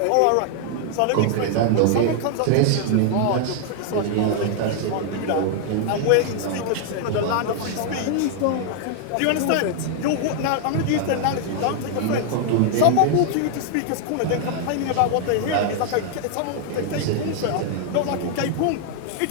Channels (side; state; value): both; different; correlation 0.00